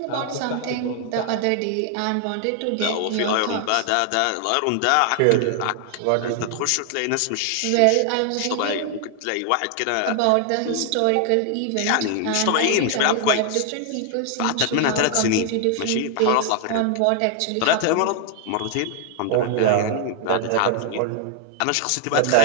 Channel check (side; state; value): both; different; correlation 0.00